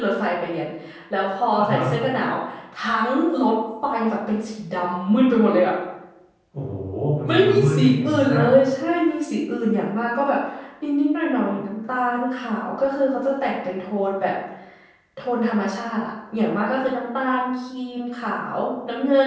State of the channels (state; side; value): identical; both; correlation 1.00